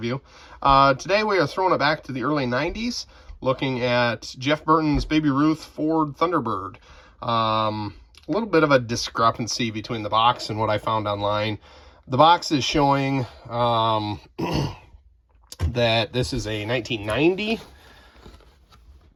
Today we are throwing it back to the early 90s, looking at Jeff Burton's Baby Ruth Ford Thunderbird. A little bit of a discrepancy between the box and what I found online. The box is showing that this is a 1990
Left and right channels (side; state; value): both; identical; correlation 1.00